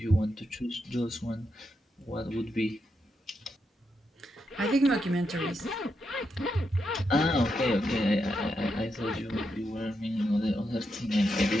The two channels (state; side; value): normal; both; correlation 0.84